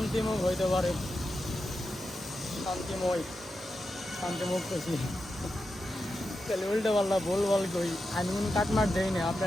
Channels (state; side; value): normal; both; correlation 0.89